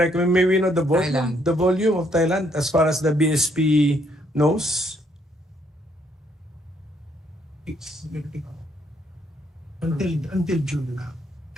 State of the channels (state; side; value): normal; both; correlation 0.70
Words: May we know the volume, Thailand. the volume of Thailand as far as the BSP knows? It's until June now.